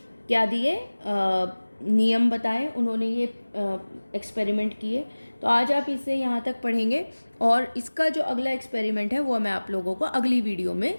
क्या दिए, नियम बताए, उन्होंने ये एक्सपेरिमेंट किए। तो आज आप इसे यहाँ तक पढ़ेंगे और इसका जो अगला एक्सपेरिमेंट है वो मैं आप लोगों को अगली वीडियो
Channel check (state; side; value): inverted; both; correlation -1.00